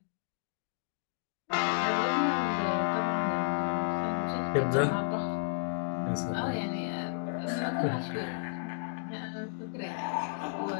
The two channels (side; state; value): right; silent; digital silence